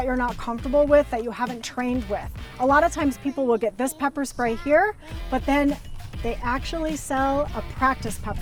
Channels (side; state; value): both; identical; correlation 1.00